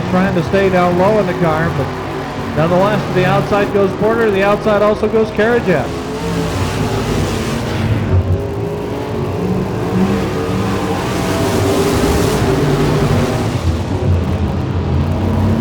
trying to stay down low in the car, but nonetheless, to the outside goes Porter. The outside also goes Carajat.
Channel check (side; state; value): both; identical; correlation 1.00